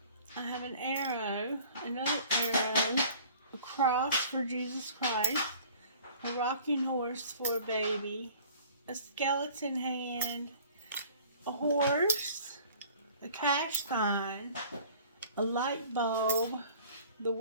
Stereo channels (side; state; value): both; inverted; correlation -0.49